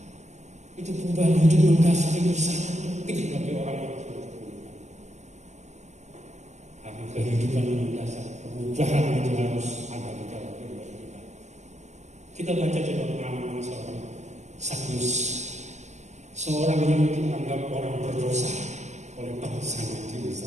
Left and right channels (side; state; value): left; late; 0.34 ms